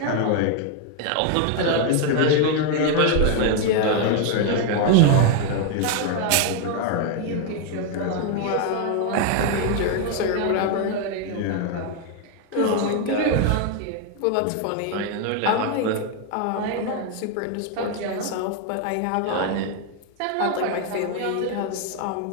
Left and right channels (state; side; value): different; both; correlation 0.01